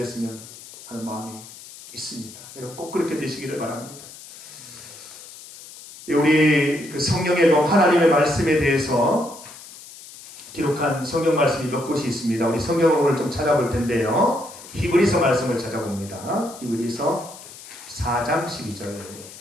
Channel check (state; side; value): noise; left; hiss, 17 dB below the sound